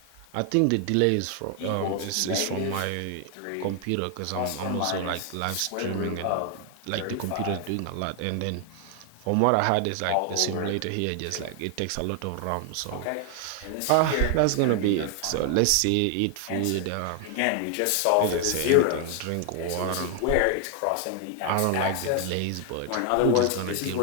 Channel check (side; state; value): both; different; correlation 0.00